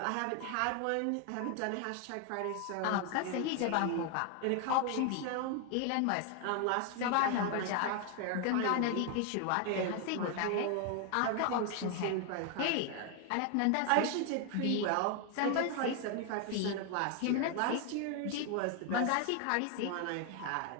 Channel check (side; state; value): both; different; correlation 0.00